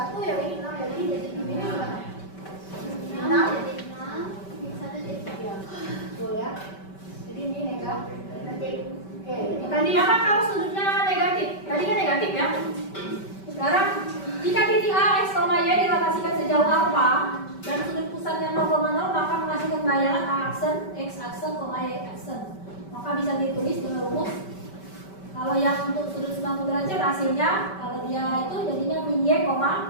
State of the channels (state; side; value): late; right; 5.2 ms